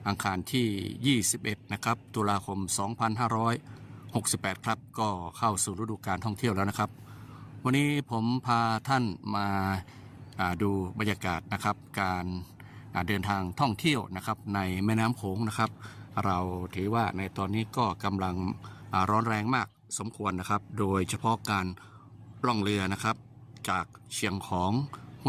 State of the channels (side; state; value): both; identical; correlation 1.00